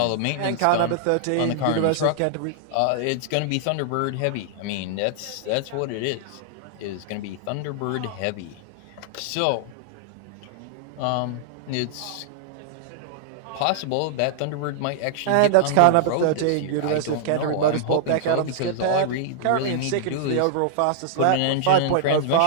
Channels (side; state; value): both; different; correlation -0.01